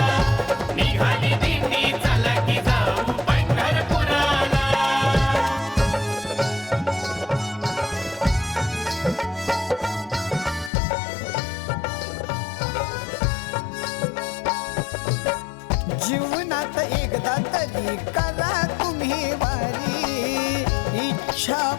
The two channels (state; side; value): drops out; right; at 10.7 s